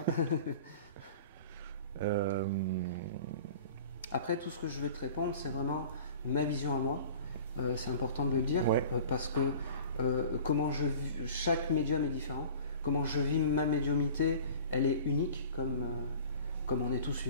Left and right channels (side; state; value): both; inverted; correlation -0.43